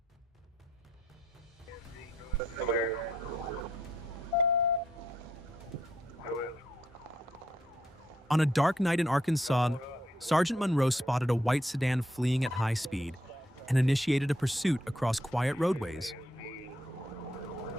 On a dark night in Arkansas, Sergeant Monroe spotted a white sedan fleeing at high speed and initiated a pursuit across quiet roadways.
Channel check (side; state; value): both; normal; correlation 0.75